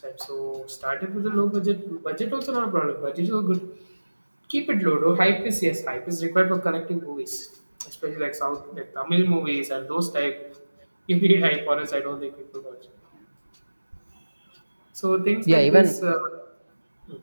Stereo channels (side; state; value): both; inverted; correlation -1.00